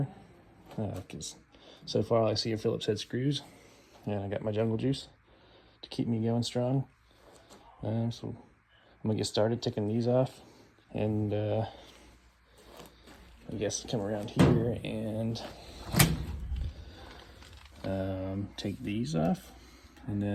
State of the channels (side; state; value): both; identical; correlation 1.00